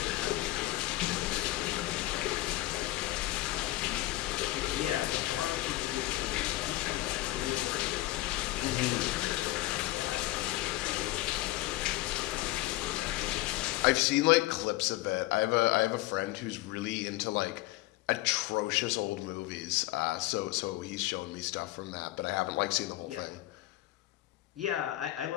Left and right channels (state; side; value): quieter; right; 17.6 dB